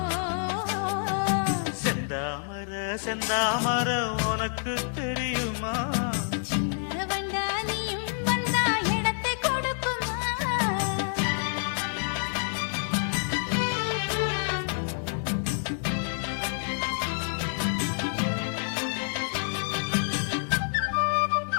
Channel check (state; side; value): silent; right; digital silence